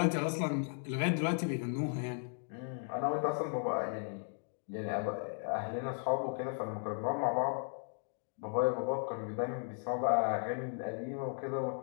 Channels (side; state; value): right; silent; 54 dB below the other